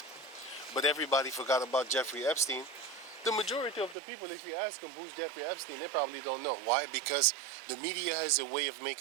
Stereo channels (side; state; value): left; drops out; at 4.0 s